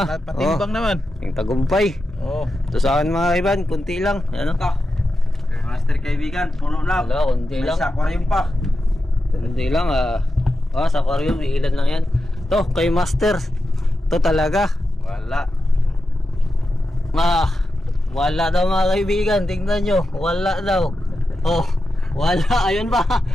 patimbang naman. Yung tagumpay. Oh, Ito sa akin mga kaibigan. Kunti lang. Ayan o. Master kaibigan. Puno na. Wala, kunti May lang. sa aquarium pa. Hindi lang sa aquarium, ilan lang yan. To, kay Master. To talaga. Wala. Wala daw mga kaibigan. Tingnan nyo. Wala daw. Oh, wala. Ayun ba?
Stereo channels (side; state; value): both; normal; correlation 0.90